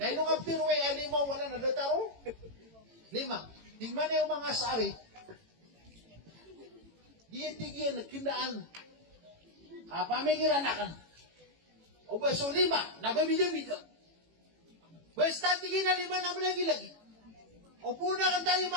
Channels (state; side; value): late; left; 18 ms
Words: Na ilo nga piruway, limaw, wala na dataro. Lima. Tingnan na yung mga sari, diyan kinaan, pamikiran na kan. O ba, so lima, nababida-bida. Basta tingin na lima na lagi-lagi. O puna kan tayo